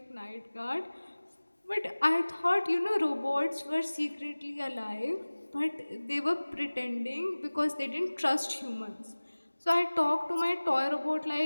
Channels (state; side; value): inverted; both; correlation -1.00